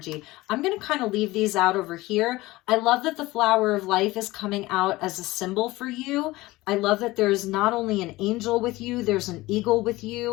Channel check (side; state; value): right; quieter; 19.4 dB